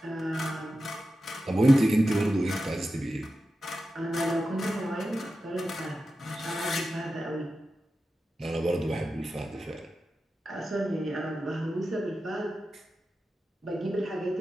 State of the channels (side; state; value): both; normal; correlation 0.92